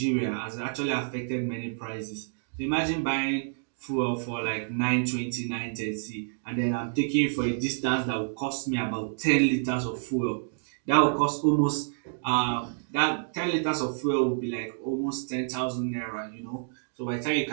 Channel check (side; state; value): left; silent; digital silence